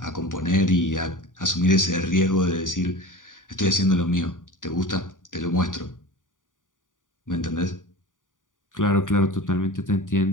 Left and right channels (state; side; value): late; right; 0.88 ms